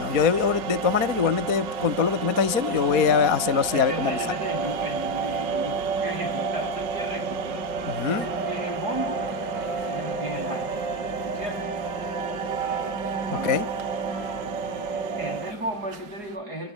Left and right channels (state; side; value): late; left; 4.2 ms